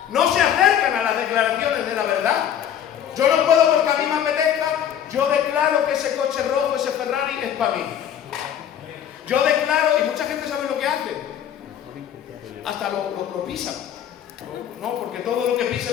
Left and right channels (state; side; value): quieter; right; 9.7 dB